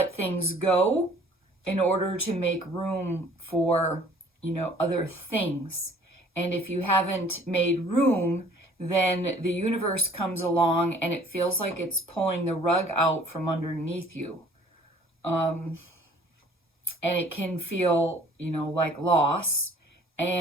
things go in order to make room for, other things. And if you haven't made room, then the universe comes along and it feels like it's pulling the rug out from underneath you. And it can feel, like loss,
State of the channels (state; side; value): normal; both; correlation 0.55